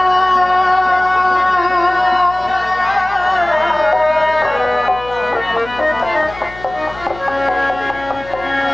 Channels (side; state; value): left; noise; hum, 18 dB below the sound